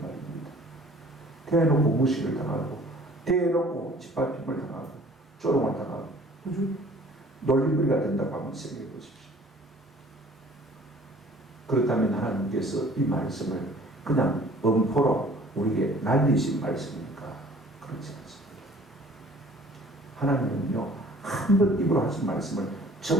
대놓고 무시를 당하고, 대놓고 짓밟힘을 당하고, 조롱을 당하고, 그죠? 놀림거리가 된다고 한번 생각해 보십시오. 그렇다면 하나님께서 이 말씀을 그냥 엄포로 우리에게 날리신 말씀입니까? 그렇지 않습니다. 하나님은요, 한 번 입으로 하신 말씀을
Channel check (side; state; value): both; normal; correlation 0.52